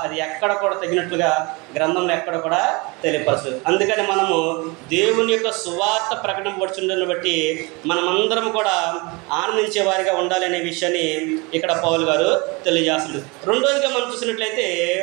అది ఎక్కడ కూడా తగినట్లుగా గ్రంథంలో ఎక్కడ కూడా తెలియపరచదు. అందుకని మనము దేవుని యొక్క సువార్త ప్రకటింపబడుతుందని బట్టి మనమందరం కూడా ఆనందించే వారిగా ఉండాలి అనే విషయాన్ని ఇక్కడ పౌలు గారు తెలియజేస్తుంది. రెండోదిగా మనం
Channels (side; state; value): left; quieter; 27.2 dB